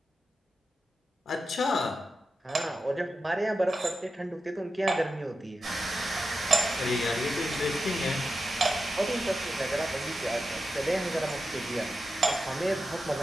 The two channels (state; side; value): normal; both; correlation 0.90